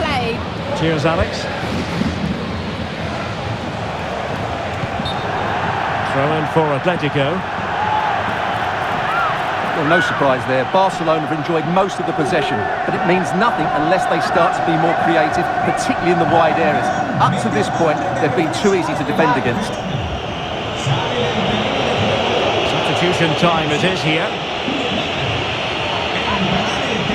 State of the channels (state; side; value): identical; both; correlation 1.00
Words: Cheers, Alex. Throw in for Atletico. Well, no surprise there. Barcelona have enjoyed most of the possession, but it means nothing unless they start to be more creative, particularly in the wide areas. Up to this point, they've been too easy to defend against. Substitution time it is here.